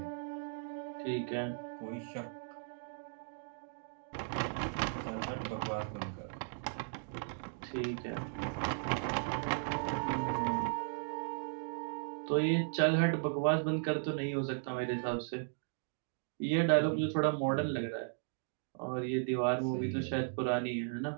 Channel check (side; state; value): left; silent; digital silence